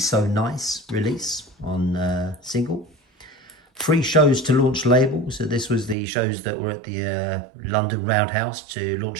Nice release on single. 3 shows to launch label. So this was the shows that were at the London Roundhouse to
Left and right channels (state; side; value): drops out; left; at 6.0 s